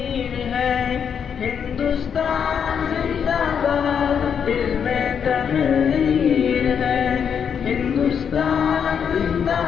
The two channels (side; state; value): right; quieter; 7.5 dB